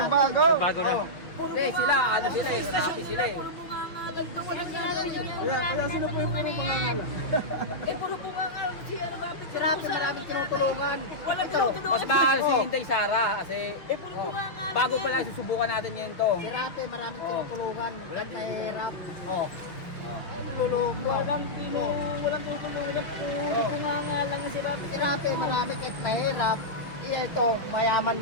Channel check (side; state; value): right; late; 5.6 ms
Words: Bago na. Hindi, sila, ano sila eh. Rapi sila eh. Kaya sino po yung puro pangangala? Puro bungangal. Si ano Rapi. Si Rapi maraming tinutulungan. Walang tinutulungan. Mas mahal si Hintay Sara kasi Puro bungangal. bago pa lang susubukan natin ngayon to. Si Rapi maraming tinutulungan. Kay Rap. Oh. Tululong mo. Walang tutulungan. Puro bungangal lang si Rapi. Si Rapi maraming kahirap. Ito, mayaman